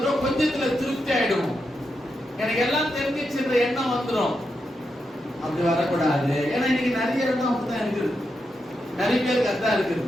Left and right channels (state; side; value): normal; both; correlation 0.85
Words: கொஞ்சத்துல திருப்தி ஆயிடும். எனக்கு எல்லாம் தெரிஞ்சிச்சுன்ற எண்ணம் வந்துடும். அப்படி வரக்கூடாது. ஏன்னா இன்னைக்கு நிறைய இடம் அப்படிதான் இருக்குது, நிறைய பேருக்கு அதான் இருக்குது.